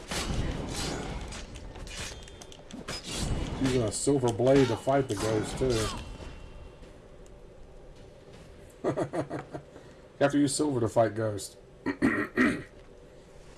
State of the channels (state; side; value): identical; both; correlation 1.00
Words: Using a silver blade to fight the ghost, too. You have to use silver to fight ghosts.